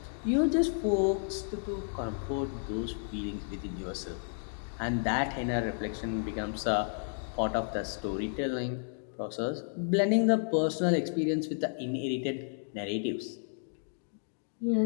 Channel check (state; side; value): silent; right; digital silence